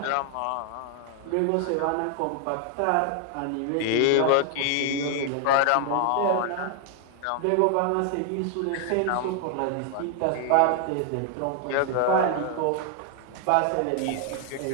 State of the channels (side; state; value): both; different; correlation 0.00